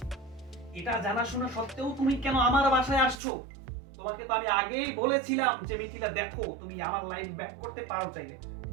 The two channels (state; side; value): drops out; left; at 3.2 s